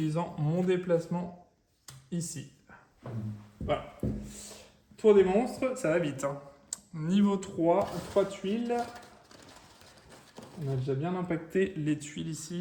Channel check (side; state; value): both; identical; correlation 1.00